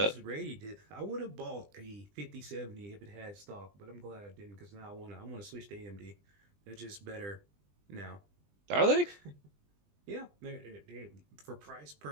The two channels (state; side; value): late; left; 20 ms